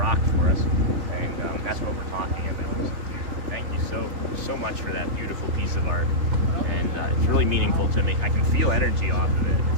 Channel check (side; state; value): left; late; 3.4 ms